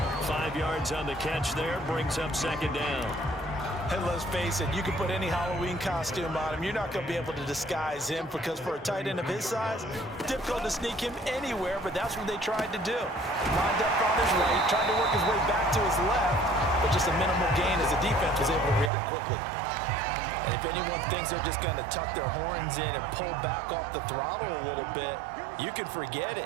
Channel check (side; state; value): left; drops out; at 18.9 s